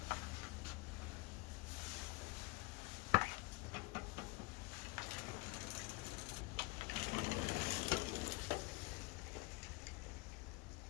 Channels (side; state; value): right; quieter; 24.8 dB